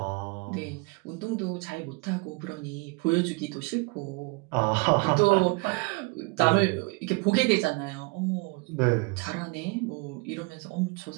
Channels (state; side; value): quieter; left; 27.6 dB